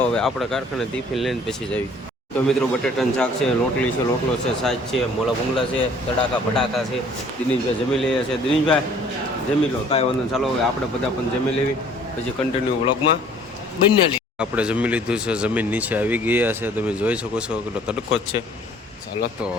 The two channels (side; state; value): both; normal; correlation 0.55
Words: હવે આપણે કારખાને ટિફિન લઈને પછી જઈએ। તો મિત્રો બટેટાનું શાક છે, રોટલી છે, રોટલો છે, સાજ છે, મોળા ભૂંગળા છે, તડાકા ભડાકા છે। દિનેશભાઈ જમી લઈએ છે। દિનેશભાઈ જમી લો, કાંઈ વાંધો, ચાલો હવે આપણે બધા પણ જમી લેવી, પછી કન્ટિન્યુ વ્લોગમાં બની લઈએ। આપણે જમી લીધું છે, જમીન નીચે આવી ગયા છે, તમે જોઈ શકો છો કેટલો તડકો જ છે। ચાલો તો